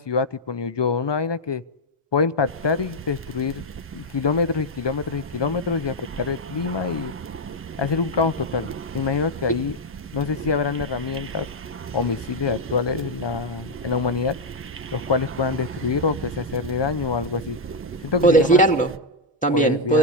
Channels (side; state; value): both; normal; correlation 0.01